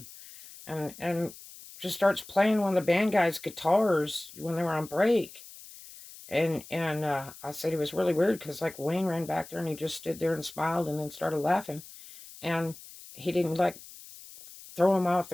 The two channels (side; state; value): left; noise; hiss, 17 dB below the sound